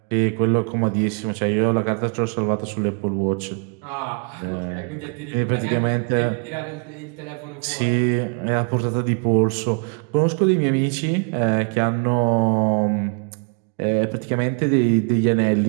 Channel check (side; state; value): left; quieter; 39.2 dB